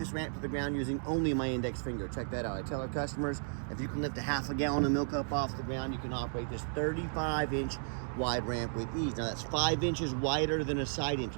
ramp to the ground using only my index finger. Check that out. I tell our customers, if you can lift a half a gallon of milk up off the ground, you can operate this 35-inch wide ramp with ease. Now that's 5 inches wider than a side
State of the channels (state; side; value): silent; left; digital silence